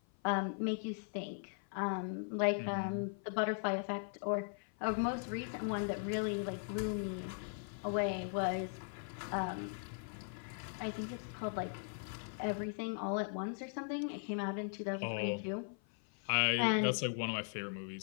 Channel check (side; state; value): right; silent; 52 dB below the other